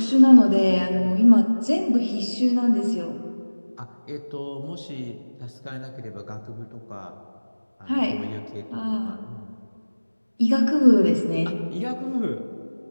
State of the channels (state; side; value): inverted; both; correlation -1.00